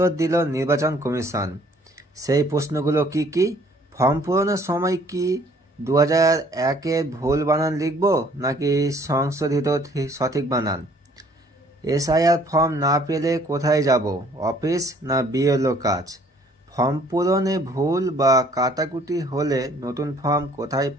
দিল নির্বাচন কমিশন। সেই প্রশ্নগুলো কি কি? ফর্ম পূরণের সময় কি 2001-এর ভুল বানান লিখব নাকি সংশোধিত সঠিক বানান? এসআইআর ফর্ম না পেলে কোথায় যাব? অফিস না বিএলও কাজ? ফর্ম পূরণে ভুল বা কাটাকুটি হলে নতুন ফর্ম কোথায়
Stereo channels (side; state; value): both; normal; correlation 0.59